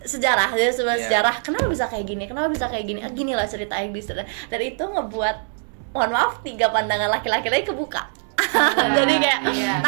sejarah, dia sebagai Iya. sejarah. Kenapa bisa kayak gini? Kenapa bisa kayak gini? Gini lah cerita Iblis. Dan itu ngebuat, mohon maaf, 3 pandangan laki-laki lagi kebuka. Jadi kayak Iya.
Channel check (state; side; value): silent; left; digital silence